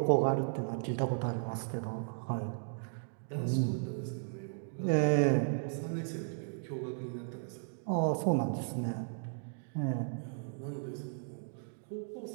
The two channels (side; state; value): left; silent; digital silence